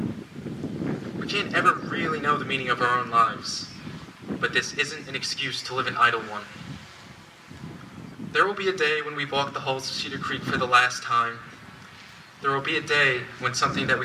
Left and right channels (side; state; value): both; identical; correlation 1.00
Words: We can't ever really know the meaning of our own lives, but this isn't an excuse to live an idle one. There will be a day when we walk the halls of Cedar Creek for the last time, There will be a day when something that